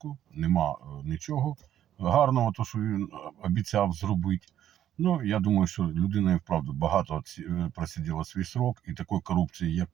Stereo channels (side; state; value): left; quieter; 11.1 dB